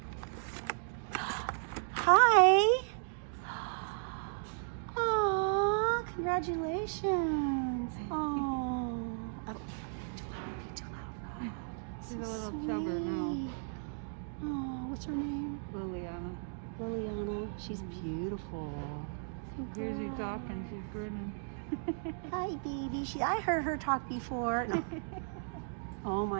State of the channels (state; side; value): silent; left; digital silence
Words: Hi. Aw, congratulations. Oh, too loud. She's a little chubber now. Oh, what's her name? Liliana. Liliana. She's beautiful. So Here's you talking, she's grinning. Hi, baby. I heard her talk before. No. Oh